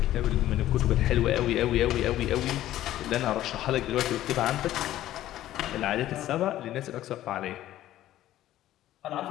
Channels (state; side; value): quieter; right; 13.7 dB